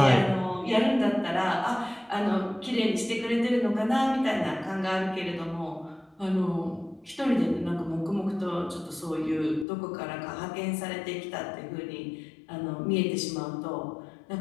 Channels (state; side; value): drops out; right; at 9.7 s